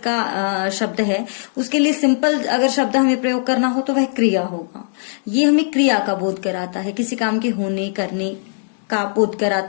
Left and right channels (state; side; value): silent; right; 66 dB below the other